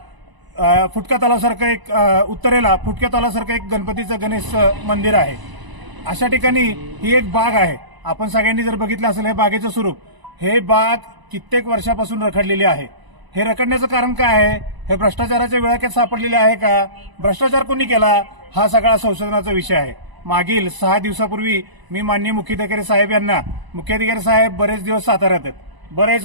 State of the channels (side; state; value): left; late; 1.0 ms